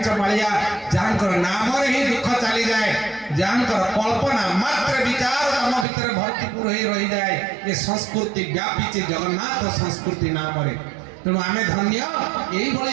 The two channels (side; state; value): left; drops out; at 5.9 s